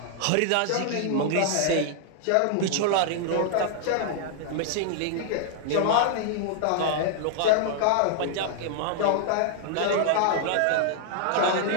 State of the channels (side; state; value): both; different; correlation -0.01